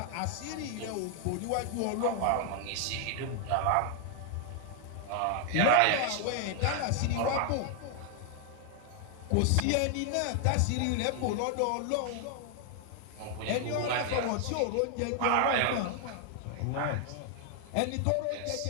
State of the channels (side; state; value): both; different; correlation 0.00